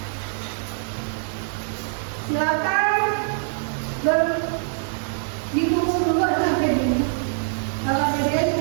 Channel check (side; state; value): left; silent; 63 dB below the other